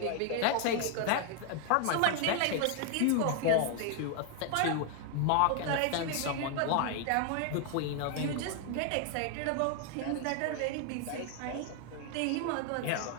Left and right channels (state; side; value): different; both; correlation 0.00